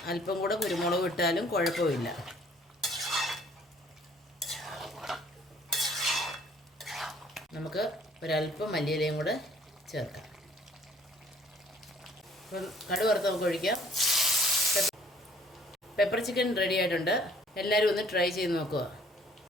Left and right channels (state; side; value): normal; both; correlation 0.58